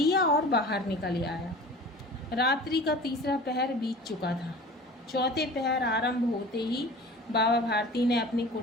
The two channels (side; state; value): both; normal; correlation 0.40